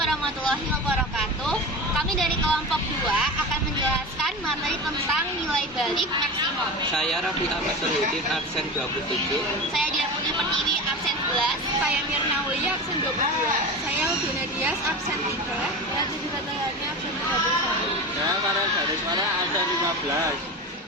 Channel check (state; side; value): normal; both; correlation 0.27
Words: wabarakatuh. Kami dari kelompok 2 akan menjelaskan materi tentang nilai balik maksimum. Saya Raffi Ahmad Solihuddin, absen 27. Saya Dia Putri Pertiwi, absen 11. Saya Mirna Wulia, absen 22. Saya Udina Dias, absen 3. Saya Tujuh Katayani, absen 31. Saya Farel Garismara, absen 15.